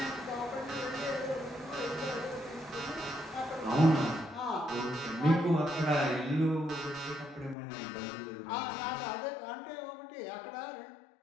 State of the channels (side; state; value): right; drops out; at 7.6 s